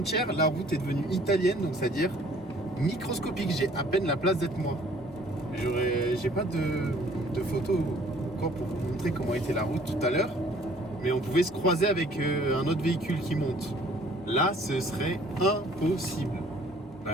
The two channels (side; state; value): both; normal; correlation 0.57